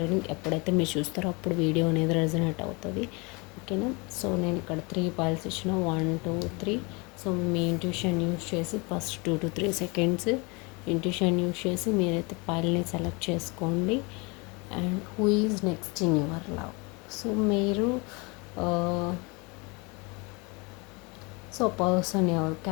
రీడింగ్. ఎప్పుడైతే మీరు చూస్తారో అప్పుడు వీడియో అనేది రెజనేట్ అవుతుంది. ఓకేనా? సో నేను ఇక్కడ 3 పైల్స్ ఇచ్చిన 1 2 3. సో మీ ఇంట్యూషన్ యూస్ చేసి first 2 to 3 seconds intuition use చేసి మీరైతే పైల్ని సెలెక్ట్ చేసుకోండి. And who is next in your love. So మీరు సో పర్సన్ ఎవరు,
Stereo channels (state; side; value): quieter; right; 28.5 dB